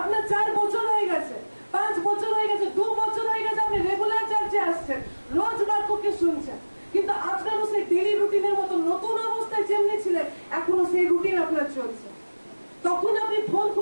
4 বছর হয়ে গেছে, 5 বছর হয়ে গেছে, 2 বছর হয়ে গেছে, আপনি রেগুলার চার্চে আসছেন, রোজ বাক্যকে শুনছেন, কিন্তু আপনারও সেই ডেইলি রুটিনের মতো নতুন অবস্থায় যেমনি ছিলেন, এখনো সেই রুটিন আপনার চলছে। তখন আপনি ফোন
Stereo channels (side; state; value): both; inverted; correlation -1.00